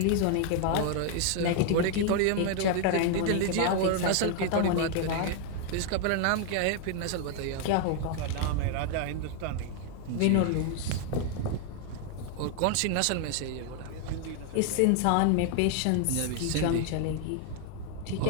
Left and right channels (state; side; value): different; both; correlation 0.00